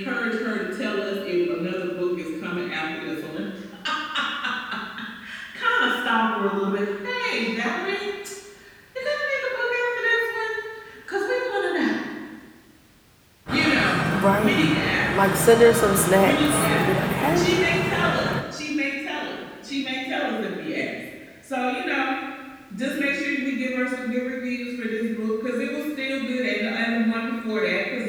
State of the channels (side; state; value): both; identical; correlation 1.00